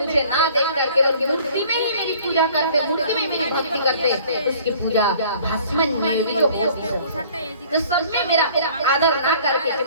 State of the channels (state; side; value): inverted; both; correlation -0.53